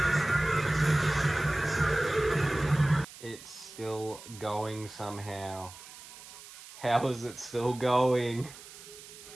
It's still going somehow. How is it still going?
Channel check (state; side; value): noise; right; hiss, 17 dB below the sound